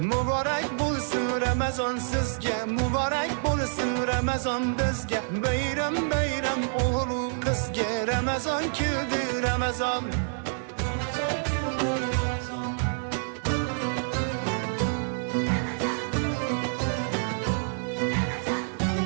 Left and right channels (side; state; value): left; silent; digital silence